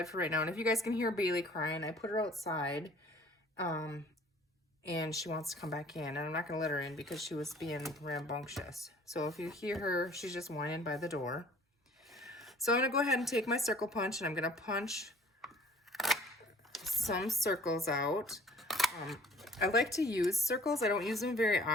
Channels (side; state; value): both; normal; correlation 0.53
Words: for right now. And if you guys can hear Bailey crying, I put her outside. And she wants to come back in, and I'm not gonna let her in because she was being rambunctious. So if you hear her, she's just whining by the door. So I'm gonna go ahead and take my circle punch, and I'm gonna punch some circles out. I like to use circles. I don't use them very